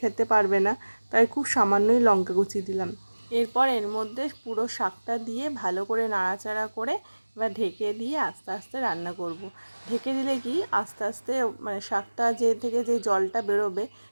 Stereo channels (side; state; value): both; inverted; correlation -1.00